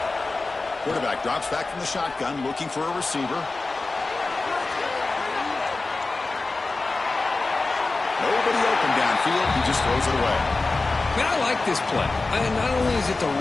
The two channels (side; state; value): right; quieter; 3.5 dB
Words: Quarterback drops back from the shotgun, looking for a receiver. Nobody open downfield. He just throws it away. Man, I like this play. Not only is it the